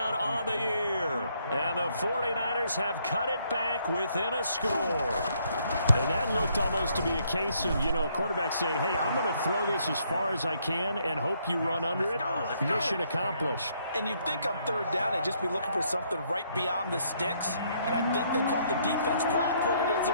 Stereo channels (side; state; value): both; inverted; correlation -0.70